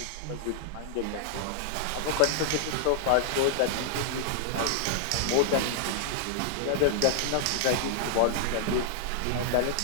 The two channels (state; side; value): different; both; correlation -0.01